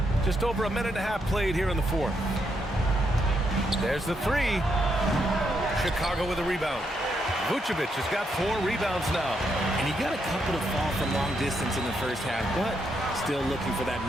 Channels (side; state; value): both; normal; correlation 0.79